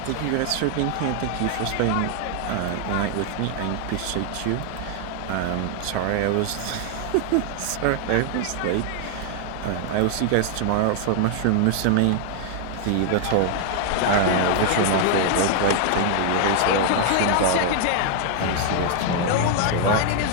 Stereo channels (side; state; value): both; different; correlation 0.00